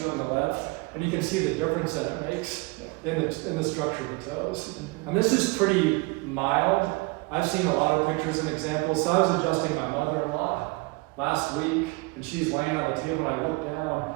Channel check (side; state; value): left; quieter; 26.1 dB